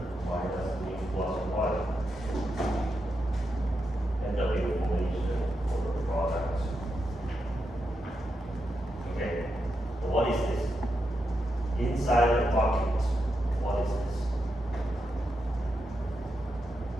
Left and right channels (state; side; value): normal; both; correlation 0.85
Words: minus mu plus 1. NW formation for the product. Okay, so what is this? Inside the bucket, what is this?